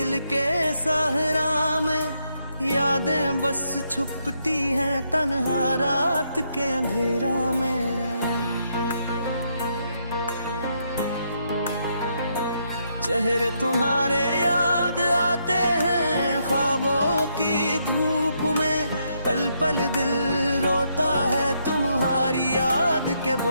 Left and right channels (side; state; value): both; inverted; correlation -0.77